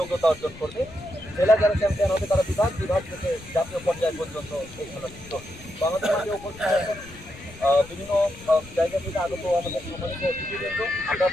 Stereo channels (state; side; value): noise; left; rumble, 19 dB below the sound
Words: অর্জন করবে। জেলা যারা চ্যাম্পিয়ন হবে তারা বিভাগ থেকে জাতীয় পর্যায় পর্যন্ত এই খেলা যুক্ত হবে। তো আমাদের মাঝে উপস্থিত আছেন বিভিন্ন জায়গা থেকে আগত আমাদের সম্মানিত অতিথিবৃন্দ। আমরা